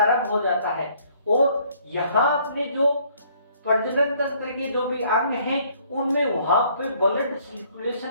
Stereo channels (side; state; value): both; inverted; correlation -0.62